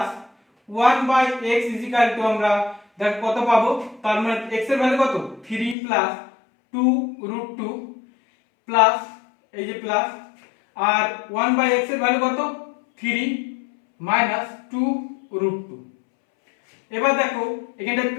1 by x is equal to আমরা দেখো কত পাবো, তার মানে x এর ভ্যালু কত 3 প্লাস 2√2 প্লাস এই যে প্লাস আর 1 বাই x এর ভ্যালু কত 3 মাইনাস 2√2। এবার দেখো এখানটা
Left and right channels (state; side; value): drops out; right; at 5.8 s